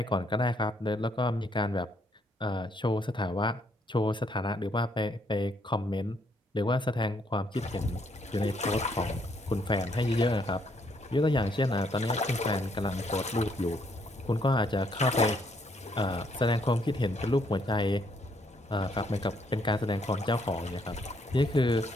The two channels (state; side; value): normal; both; correlation 0.71